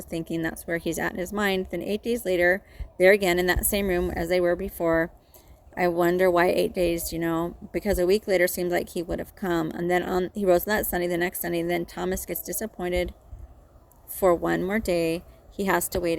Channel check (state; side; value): identical; both; correlation 1.00